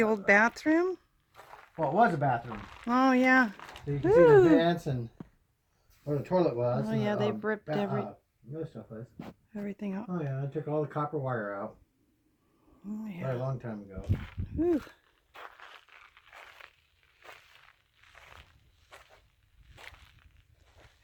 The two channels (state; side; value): identical; both; correlation 1.00